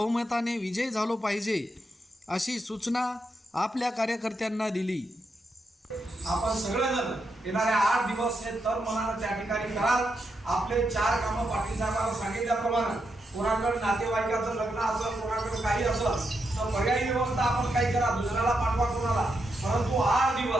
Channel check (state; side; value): normal; both; correlation 0.83